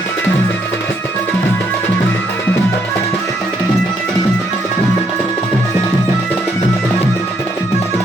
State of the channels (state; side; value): normal; both; correlation 0.72